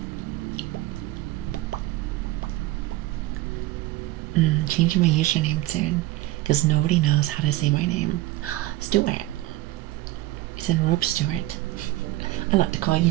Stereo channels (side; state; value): left; quieter; 17.7 dB